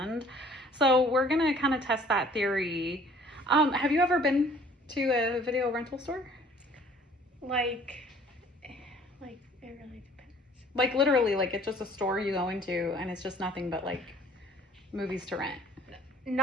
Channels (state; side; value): normal; both; correlation 0.55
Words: So we're going to kind of test that theory. Have you ever been to a video rental store? Like it really depends. Like literally, like it's just a store you go into and it's just nothing but like movies to rent.